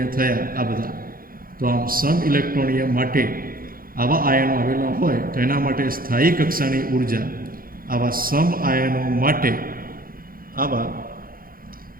થયા આ બધા. તો આમ સમ ઇલેક્ટ્રોનીય માટે આવા આયનો આવેલા હોય તો એના માટે સ્થાયી કક્ષાની ઉર્જા આવા સમ આયનો માટે આવા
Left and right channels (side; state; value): left; late; 0.42 ms